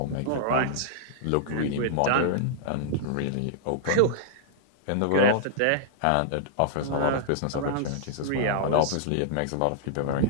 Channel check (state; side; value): different; both; correlation -0.01